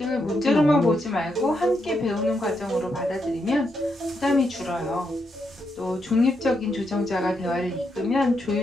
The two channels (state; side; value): normal; both; correlation 0.81